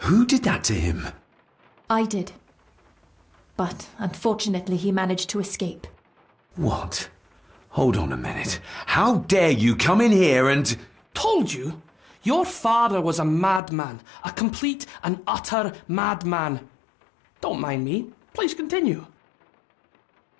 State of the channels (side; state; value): right; drops out; at 13.6 s